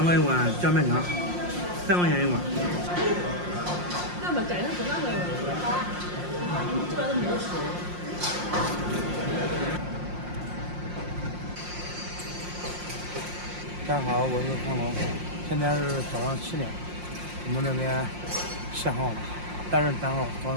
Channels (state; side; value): late; left; 5.6 ms